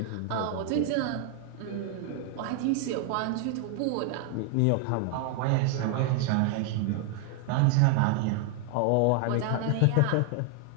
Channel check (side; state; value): both; different; correlation 0.00